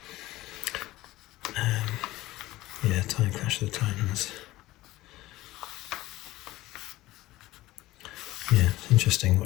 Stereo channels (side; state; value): right; quieter; 17.5 dB